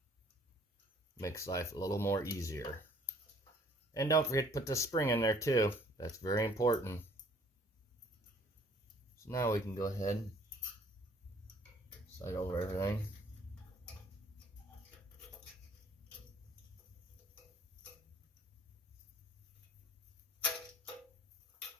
Makes life a little more easier. And don't forget to put the spring in there too. That's very important. So now we can go ahead and slide over everything.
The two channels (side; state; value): both; normal; correlation 0.57